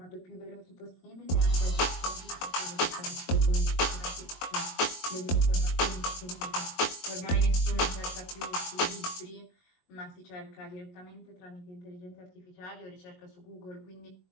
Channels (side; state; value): right; late; 22 ms